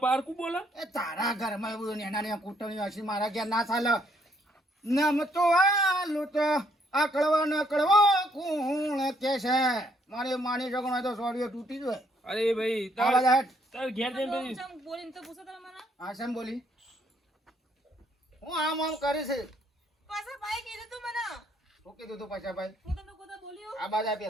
પારકું બોલે. એ તારા ઘરમાં એવું નેના કૂટણી હશે મારા ઘેર ના ચાલે. નમ તો આલુ તો આ કળવા ન કળવો કોણ કે છે? મારી માની છોકરો તો સોડિયો તૂટી જાય. અરે ભાઈ આવા તાર જાટ. તાર ઘેર જઈને પછી ચમ બોલીને તો પૂછો તમે મને આ શેમ બોલી? હું આમ કરી છે. પાછા ભાઈ કીધું તું મને હું કીધું તું પાછાભાઈ? હું તમને કોતા બોલ્યો આ બાજુ આ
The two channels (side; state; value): both; normal; correlation 0.69